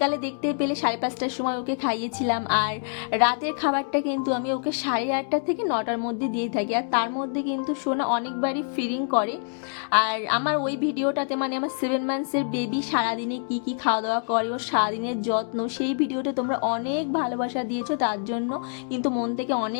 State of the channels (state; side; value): silent; right; 61 dB below the other